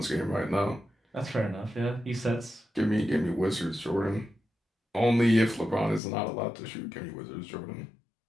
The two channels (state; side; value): drops out; right; at 6.0 s